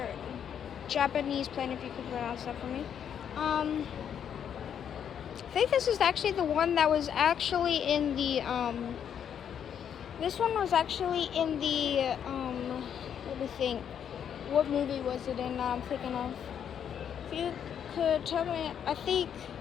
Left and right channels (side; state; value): right; quieter; 8.6 dB